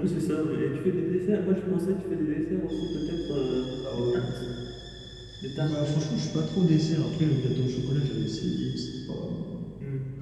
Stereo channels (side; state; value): both; identical; correlation 1.00